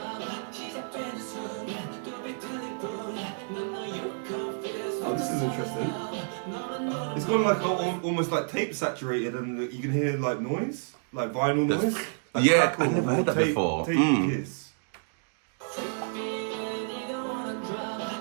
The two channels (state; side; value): silent; left; digital silence